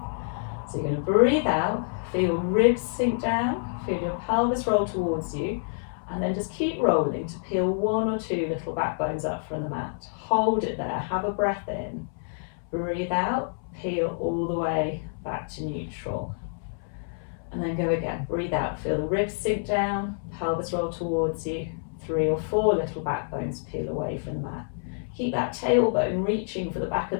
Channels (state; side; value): silent; right; 60 dB below the other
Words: So you're going to breathe out, feel your ribs sink down, feel your pelvis roll towards you, and then just keep rolling to peel one or two little back bones up from the mat. Hold it there, have a breath in, breathe out, peel all the way back to neutral. And then go again, breathe out, feel the ribs sink down, pelvis roll towards you, 3 or 4 little back bones peel away from the mat. Keep that tailbone reaching for the back